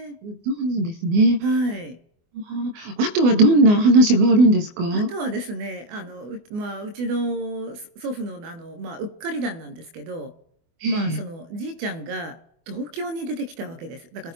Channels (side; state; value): left; late; 24 ms